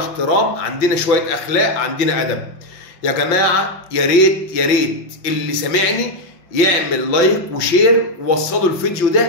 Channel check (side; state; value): right; late; 5.8 ms